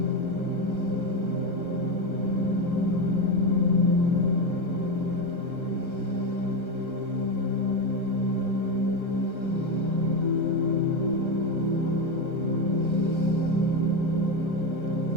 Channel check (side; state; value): right; late; 1.3 ms